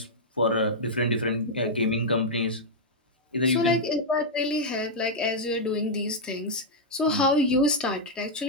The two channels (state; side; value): normal; both; correlation -0.05